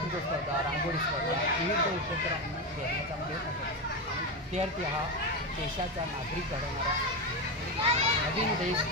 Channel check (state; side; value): normal; both; correlation 0.14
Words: स्पर्धा, रांगोळी स्पर्धा, विविध उपक्रम घेण्याचा प्रयत्न करतो। आणि विद्यार्थी हा देशाचा नागरिक घडवणारा नवीन देश,